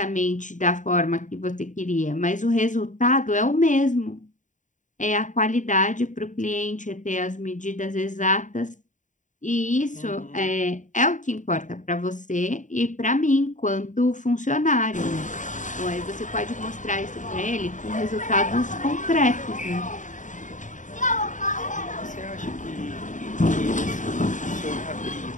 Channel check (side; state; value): right; late; 0.36 ms